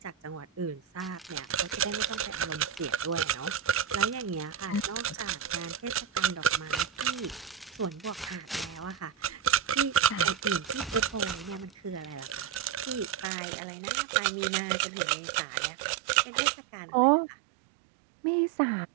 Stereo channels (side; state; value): left; drops out; at 13.3 s